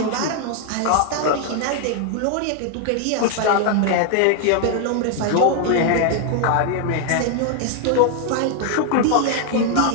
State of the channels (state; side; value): different; both; correlation 0.00